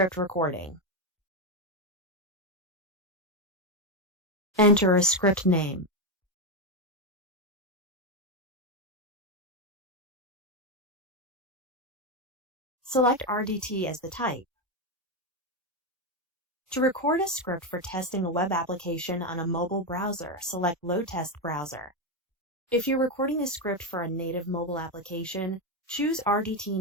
Recording. Enter a script name. Select RDT as the type. To record a script for testing a web application on a mobile browser, select Load Test Browser. If you're recording a script for a native mobile application, choose RDT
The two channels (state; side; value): normal; both; correlation 0.08